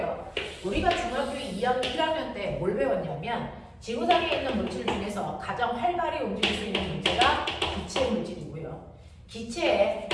우리가 중학교 2학년 1학년 때 뭘 배웠냐면 지구상에 있는 물질 중에서 가장 활발히 움직일 수 있는 물체가 기체 물질이고요. 기체의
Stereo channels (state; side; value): identical; both; correlation 1.00